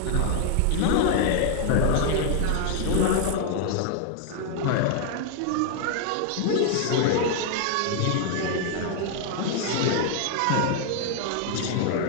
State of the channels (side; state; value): both; different; correlation 0.00